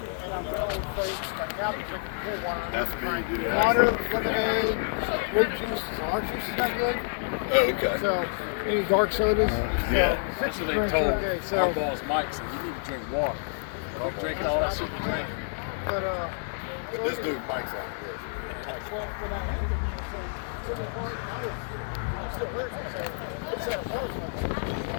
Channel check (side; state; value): right; silent; 59 dB below the other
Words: And I'm really afraid to start out and drink more water. That's me. Water, lemonade, grape juice. Our juice is not good. Oh, okay. So, any dark sodas? Yeah. That's what they told my boss Mike. Said you need to drink water. Like drinking all that shit you drink. But This dude Mike's like this.